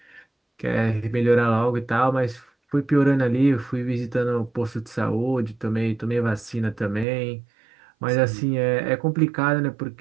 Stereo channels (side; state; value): left; drops out; at 7.1 s